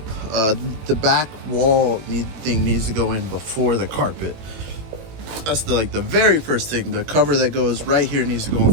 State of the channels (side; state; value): left; late; 19 ms